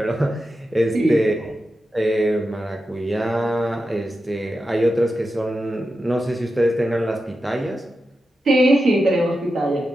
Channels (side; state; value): both; normal; correlation 0.90